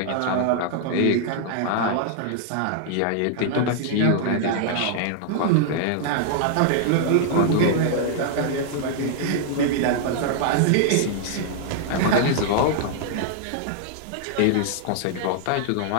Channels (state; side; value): different; both; correlation -0.01